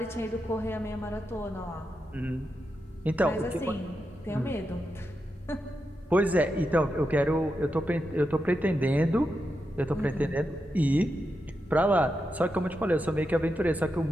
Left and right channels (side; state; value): both; normal; correlation 0.87